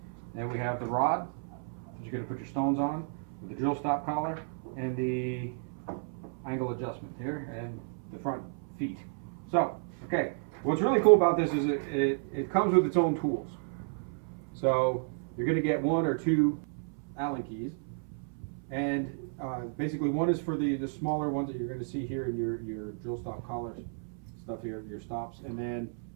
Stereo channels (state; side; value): silent; left; 56 dB below the other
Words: And we have the rod that you're going to put your stones on, with the drill stop collar, and the angle adjustment here, and the front feet. So, okay, what's really cool about this is it comes with its own tools. So you're going to get 1 or 2 Allen keys. And basically one is for the smaller ones that you're going to see here in your drill stop collars stuff here, your stops, and then